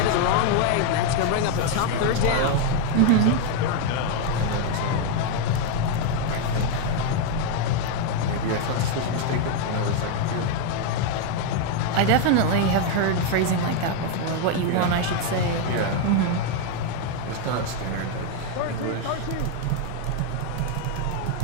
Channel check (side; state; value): both; different; correlation 0.01